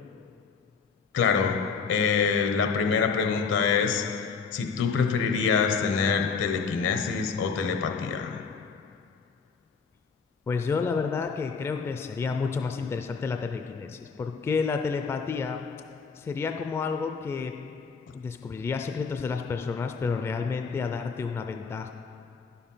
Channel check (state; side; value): quieter; right; 5.4 dB